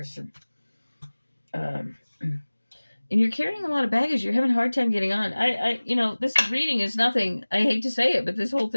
And you're carrying a lot of baggage. You're having a hard time getting on. This reading is nothing. I hate to say it, but this whole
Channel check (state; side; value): inverted; both; correlation -1.00